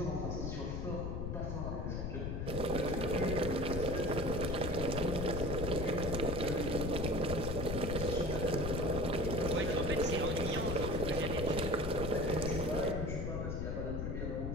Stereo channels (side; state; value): left; noise; rumble, 2 dB below the sound